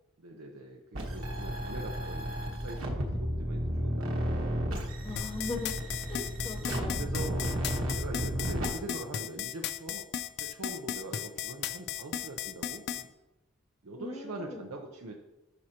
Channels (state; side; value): normal; both; correlation 0.64